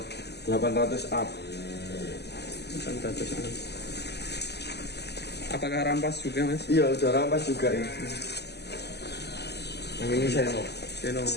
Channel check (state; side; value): late; right; 0.49 ms